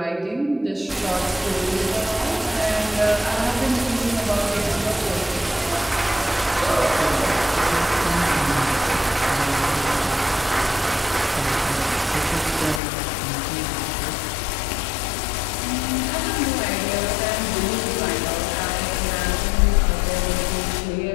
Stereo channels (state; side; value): drops out; right; at 12.8 s